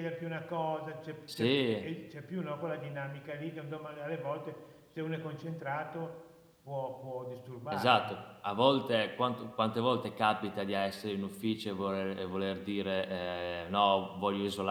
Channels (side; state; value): both; identical; correlation 1.00